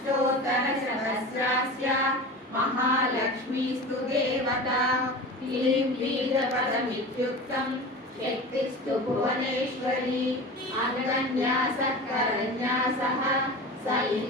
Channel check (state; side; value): normal; both; correlation 0.32